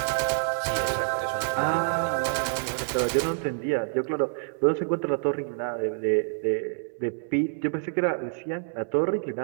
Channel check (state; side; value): silent; left; digital silence